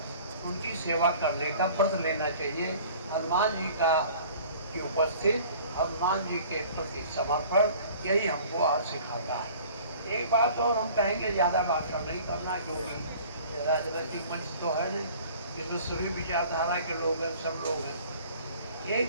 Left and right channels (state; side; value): inverted; both; correlation -0.48